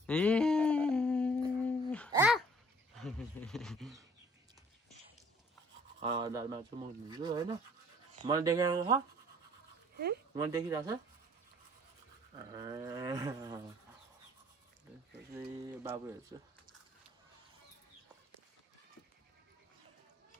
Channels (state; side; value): normal; both; correlation 0.57